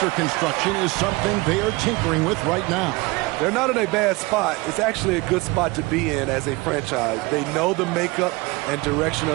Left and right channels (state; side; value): quieter; left; 23.6 dB